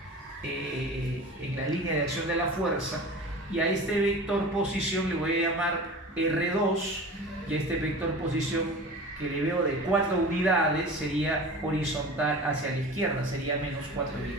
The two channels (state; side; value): normal; both; correlation 0.36